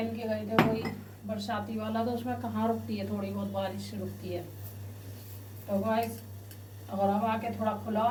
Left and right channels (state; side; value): identical; both; correlation 1.00